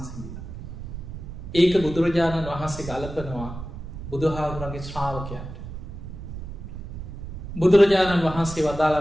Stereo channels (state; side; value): noise; right; rumble, 10 dB below the sound